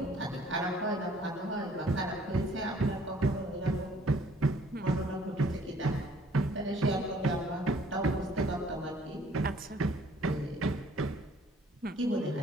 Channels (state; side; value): normal; both; correlation 0.59